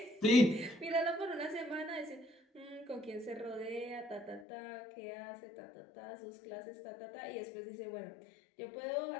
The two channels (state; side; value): drops out; right; at 4.5 s